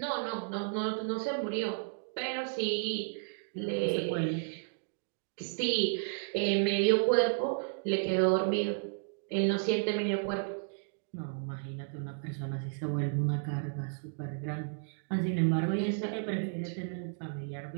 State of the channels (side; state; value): left; silent; digital silence